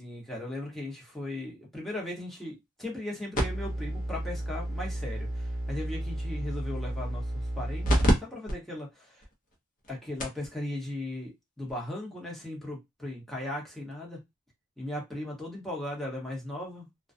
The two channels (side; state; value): both; normal; correlation 0.82